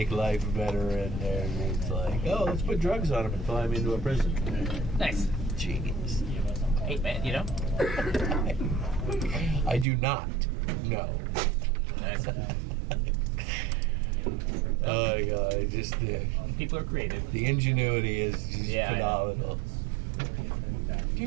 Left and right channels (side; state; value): left; drops out; at 9.9 s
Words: life better, and it's like, oh, let's put drugs on them and fly them into a prison. Nice. Genius. Hey, man, I do not. No. Nice. Oh my God! Just People are creative. the ingenuity is just Yeah, I know. phenomenal.